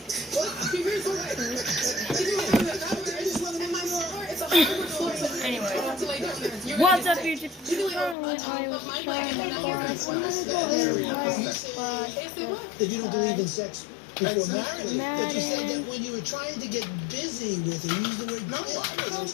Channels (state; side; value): drops out; right; at 8.2 s